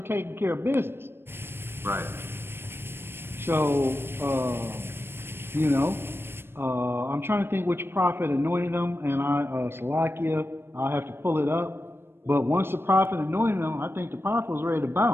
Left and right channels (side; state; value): left; late; 0.11 ms